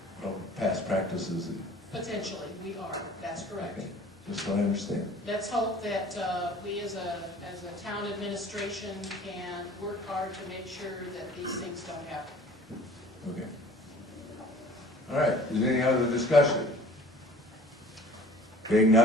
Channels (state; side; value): normal; both; correlation 0.48